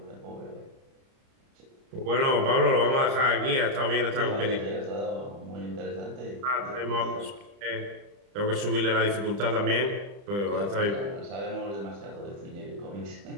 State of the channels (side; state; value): left; late; 30 ms